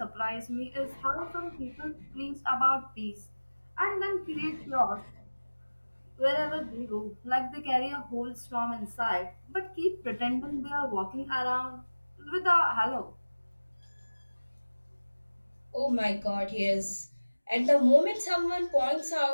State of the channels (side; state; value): both; inverted; correlation -1.00